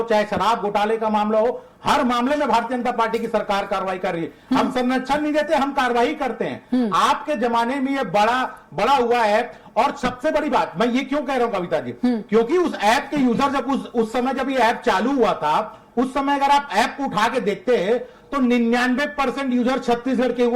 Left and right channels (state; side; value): identical; both; correlation 1.00